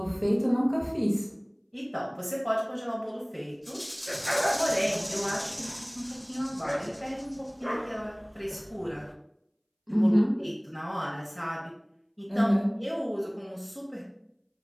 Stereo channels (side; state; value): both; identical; correlation 1.00